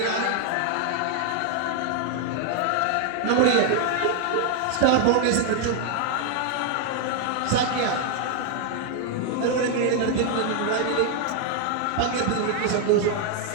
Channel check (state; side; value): different; both; correlation 0.00